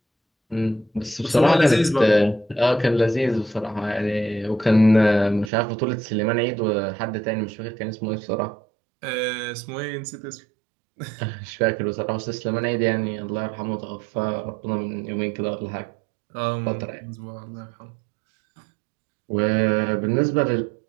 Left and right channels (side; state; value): left; drops out; at 5.5 s